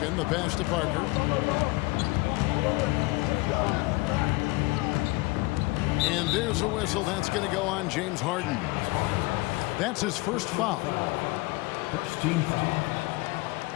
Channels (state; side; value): quieter; right; 23.1 dB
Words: the pass to Parker. And there's a whistle. That's going to go on James Harden. That's his first foul. First team foul.